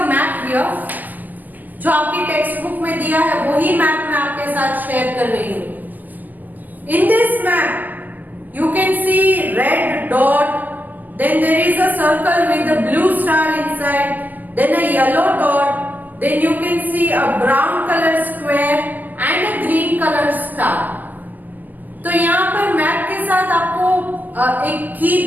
map here, जो आपकी टेक्स्ट बुक में दिया है वही मैप मैं आपके साथ शेयर कर रही हूं। In this map you can see red dot, then there is a circle with a blue star inside, then a yellow dot, then you can see a brown color square and a green color star. तो यहाँ पर map के साथ आपको एक की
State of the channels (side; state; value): left; late; 0.084 ms